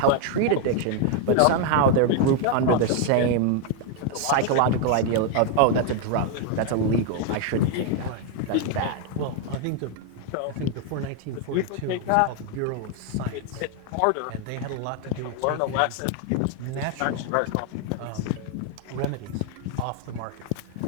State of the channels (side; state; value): both; different; correlation 0.00